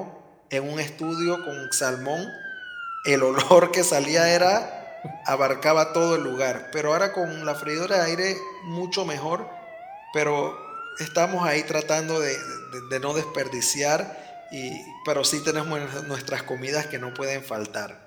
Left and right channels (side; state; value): both; identical; correlation 1.00